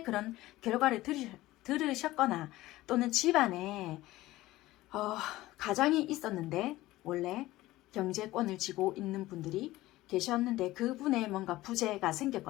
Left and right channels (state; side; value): quieter; right; 17.3 dB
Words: 그런 결과를 들으셨거나, 또는 집안에 가장이 있었는데 원래 경제권을 쥐고 있는 분들이 계셨는데 그분의 뭔가 부재가